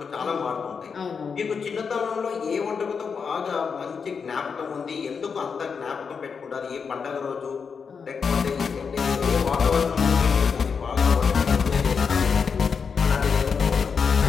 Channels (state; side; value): quieter; right; 5.9 dB